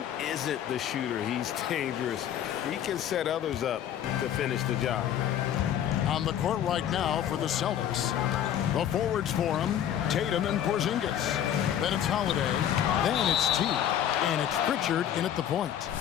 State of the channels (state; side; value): quieter; right; 10.3 dB